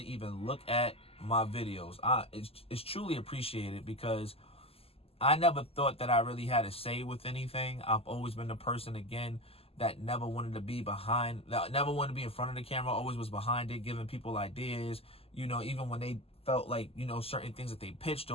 even look at my videos. It's truly appreciated because I never thought that I really had a say with anything. I've always been the person, again, that never wanted to be behind, that never wanted to be in front of the camera, always was behind it, giving people ideas, even when they felt like, certain things that they pitched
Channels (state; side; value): late; right; 0.28 ms